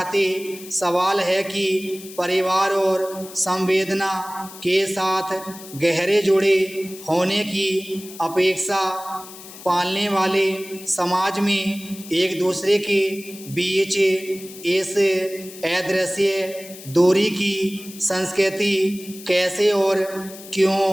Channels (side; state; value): left; noise; hiss, 16 dB below the sound